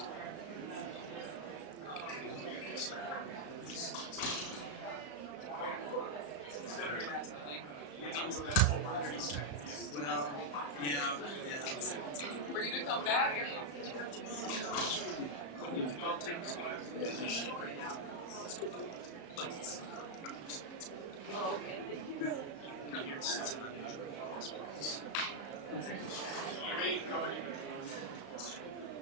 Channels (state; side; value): late; right; 35 ms